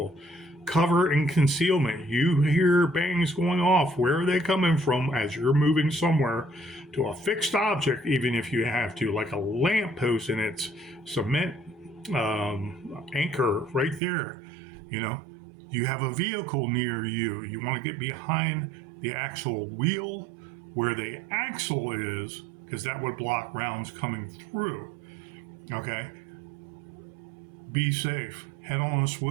Cover and concealment. You hear bangs going off. Where are they coming from as you're moving somewhere to a fixed object, even if you have to, like a lamppost and its cement anchor right there, You have a vehicle near you. You want to get behind the actual wheel where the axle is, because that would block rounds coming through. Okay? Be safe. Head on a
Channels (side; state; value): left; drops out; at 14.0 s